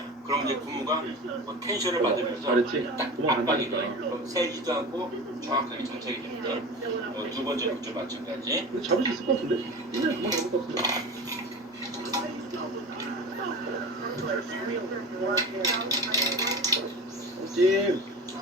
그럼 이제 고무가 뭐 텐션을 받으면서 잘했지? 딱 도망 안 압박이 가니까. 돼요. 그럼 세지도 않고 정확하게 장착이 됩니다. 두 번째 것도 마찬가지. 근데 잡을 수 있을 것 같은데? 그냥 그만 잡을 것 같은데. 찜!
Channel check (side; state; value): both; normal; correlation 0.32